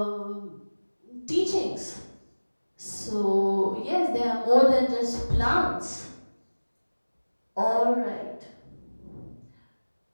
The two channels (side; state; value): both; inverted; correlation -1.00